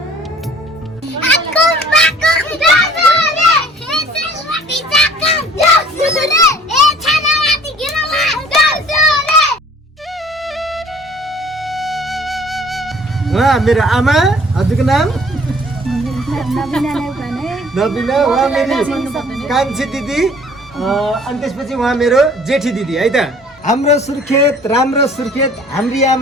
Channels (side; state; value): both; normal; correlation 0.52